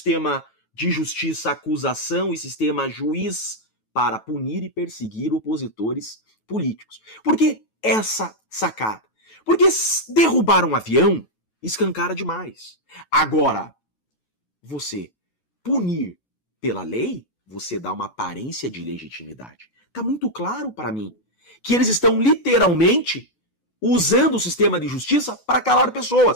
de justiça, acusação e sistema juiz para punir e perseguir opositores políticos. Por que essa sacada? Porque derrubar um avião escancara demais. Agora, você punir pela lei, você dá uma aparência de legitimidade. Está muito claro para mim que eles estão literalmente usando o sistema de justiça para calar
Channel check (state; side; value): late; right; 9.2 ms